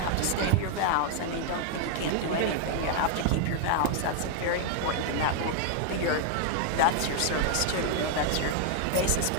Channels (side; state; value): both; different; correlation 0.00